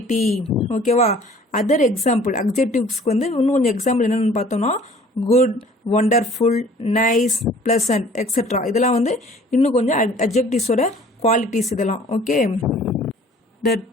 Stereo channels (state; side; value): normal; both; correlation 0.52